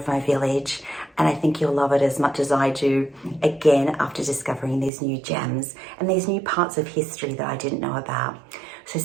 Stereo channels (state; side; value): drops out; left; at 4.9 s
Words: my village, and I think you'll love it as much as I do, again, after discovering these new gems and these new parts of history that I didn't know about. So